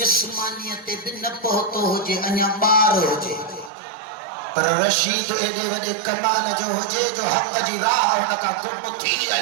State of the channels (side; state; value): left; drops out; at 3.7 s